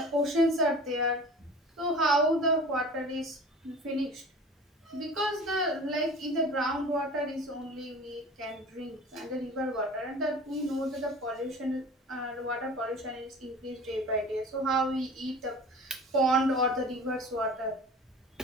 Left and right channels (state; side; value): normal; both; correlation 0.40